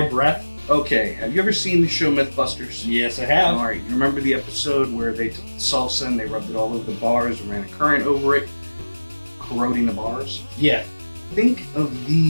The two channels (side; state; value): both; inverted; correlation -1.00